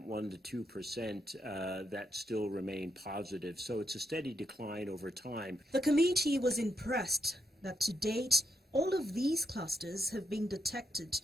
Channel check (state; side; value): normal; both; correlation 0.80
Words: 1 to 2% that still remain positive. So it's a steady decline over time. The committee was impressed that to date, all of these clusters have been detected